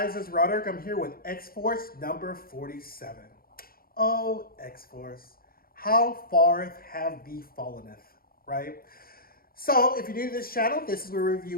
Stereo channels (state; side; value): late; right; 0.43 ms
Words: it's Roderick. I'm here with X-Force number 47. Oh, X-Force, how far have thee fallenneth, right? So, if you're new to this channel, this is where we